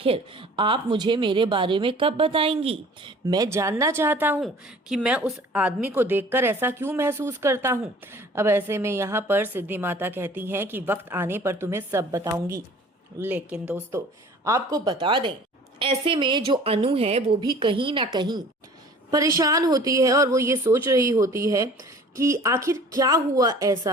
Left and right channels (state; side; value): normal; both; correlation 0.47